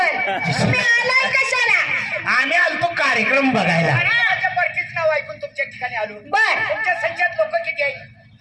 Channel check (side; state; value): both; identical; correlation 1.00